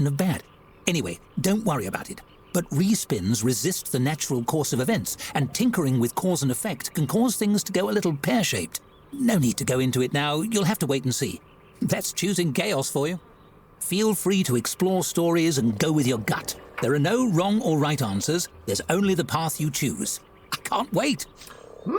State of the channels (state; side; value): identical; both; correlation 1.00